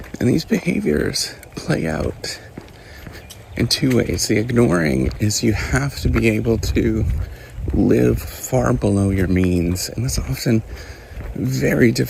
And these behaviors play out in two ways. The ignoring is you have to be able to live far below your means, and that's often very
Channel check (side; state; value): both; identical; correlation 1.00